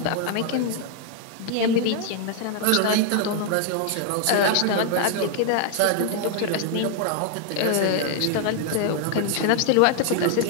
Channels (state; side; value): different; both; correlation 0.00